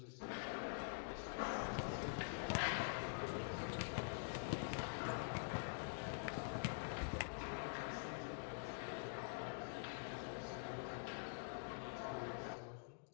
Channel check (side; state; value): right; silent; digital silence